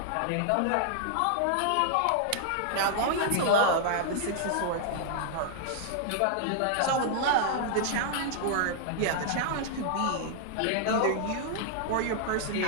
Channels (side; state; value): both; different; correlation -0.01